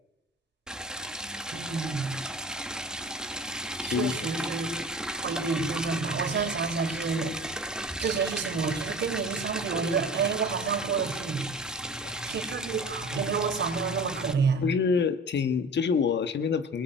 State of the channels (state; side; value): normal; both; correlation 0.39